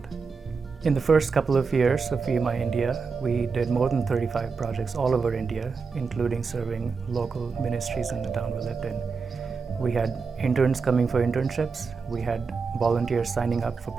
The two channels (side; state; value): left; quieter; 5.0 dB